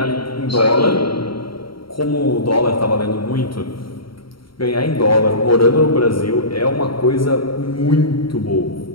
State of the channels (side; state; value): right; late; 0.74 ms